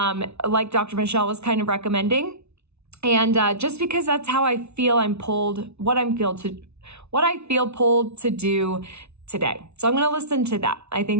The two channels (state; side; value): late; left; 0.81 ms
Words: Like Dr. Michelle was kind of recommending. And just because that's how I feel what I feel pulled to do today. So I'm going to listen to that. I